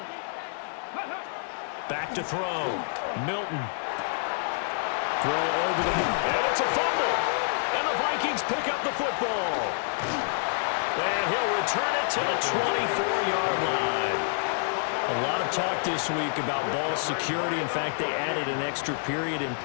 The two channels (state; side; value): silent; right; digital silence